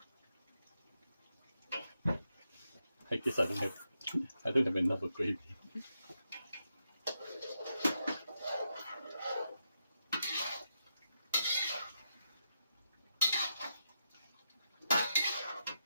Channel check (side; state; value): both; inverted; correlation -0.84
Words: I guess I don't have enough of gravy.